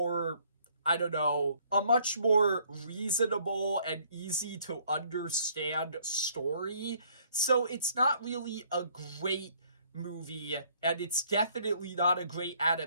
I don't know, a much more reasonable and easy to understand story. So it's not really a great movie, and it's definitely not a great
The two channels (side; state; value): both; inverted; correlation -0.63